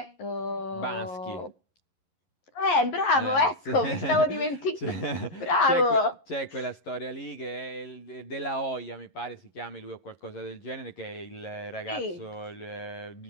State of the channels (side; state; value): right; late; 11 ms